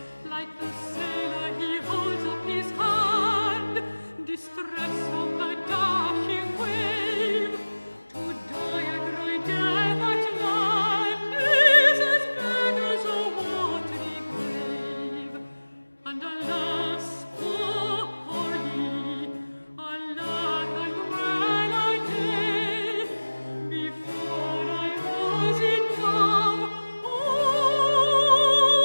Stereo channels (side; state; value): both; inverted; correlation -1.00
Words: Like the sailor he holds up his hand, distress on the dashing wave. To die a great death at land is as bad as a watery grave. And alas, poor Polly, alack, and well a day, before I was in love,